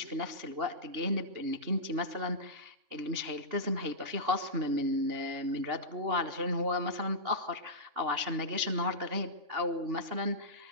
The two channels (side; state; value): left; late; 3.5 ms